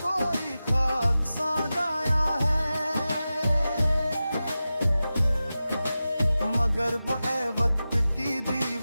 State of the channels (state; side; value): inverted; both; correlation -0.94